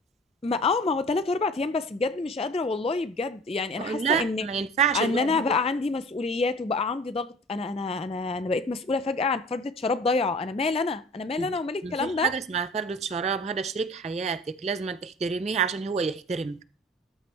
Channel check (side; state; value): both; normal; correlation 0.43